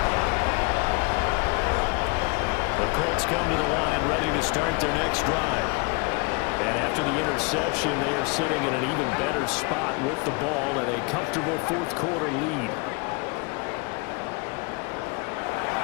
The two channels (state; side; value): quieter; right; 29.1 dB